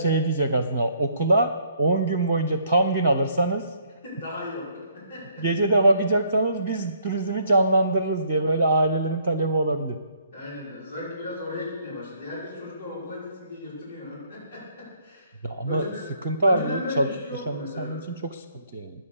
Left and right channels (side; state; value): both; inverted; correlation -0.66